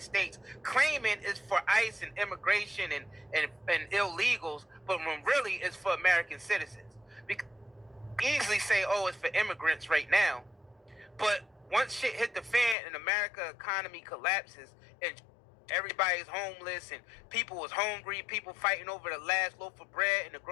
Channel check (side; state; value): right; drops out; at 12.8 s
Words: States, claiming it's for ICE and immigration and illegals, but when really it's for American citizens. Because easily say, oh, it's for immigrants right now, but once shit hit the fan and America economy collapses and everybody's homeless and people was hungry, people fighting over the last loaf of bread in the